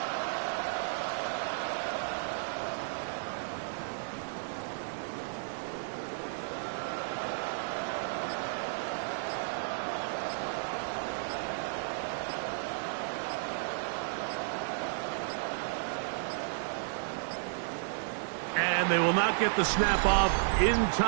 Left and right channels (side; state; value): left; silent; 56 dB below the other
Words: And they will not get the snap off in